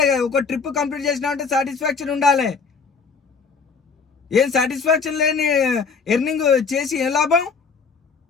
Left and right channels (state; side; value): quieter; right; 5.3 dB